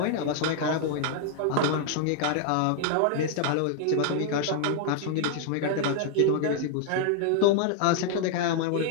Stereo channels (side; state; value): both; different; correlation 0.00